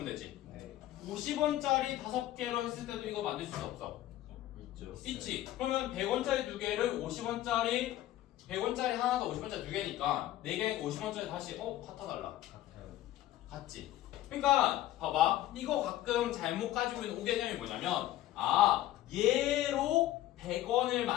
되지? 네. 50원짜리 5개로 했을 때도 이거 만들 수 있어, 없어? 있죠. 있지? 그러면 100원짜리 두 개를 50원짜리 100원짜리 하나 더 50원짜리 두 개니까 4개 50원짜리 다시 같아달라. 같아요. 같지? 그러니까 봐봐. 이거 가끔 잘못 가지고 있는 오개념이 뭐냐면 얘로 100원을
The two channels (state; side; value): quieter; right; 14.2 dB